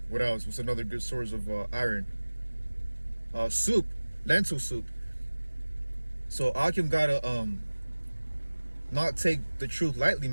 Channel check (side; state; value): both; inverted; correlation -1.00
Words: What else? What's another good source of iron? Soup, lentil soup. So Akim gotta not take the truth lightly,